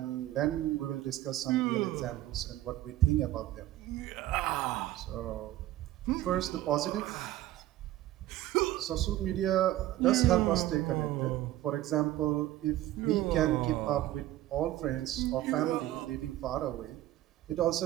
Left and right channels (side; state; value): left; quieter; 14.6 dB